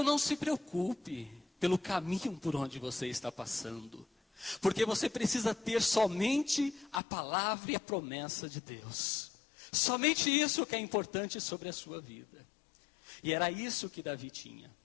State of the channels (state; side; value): drops out; right; at 7.0 s